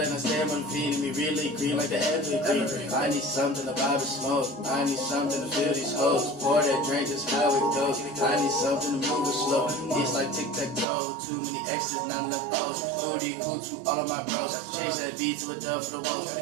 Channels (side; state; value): left; drops out; at 10.9 s